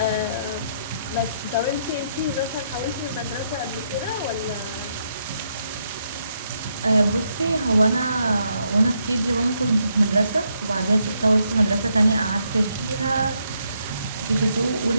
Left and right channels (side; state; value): both; inverted; correlation -0.76